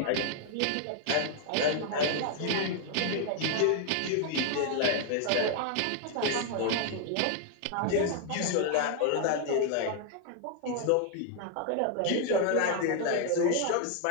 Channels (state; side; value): different; both; correlation 0.00